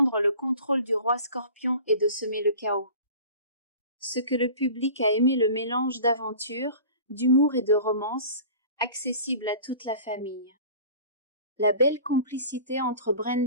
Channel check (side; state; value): both; inverted; correlation -0.42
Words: le contrôle du roi scorpion et de semer le chaos. Ce que le public a aimé, le mélange d'aventure, d'humour et de romance, accessible à toute la famille. La belle complicité entre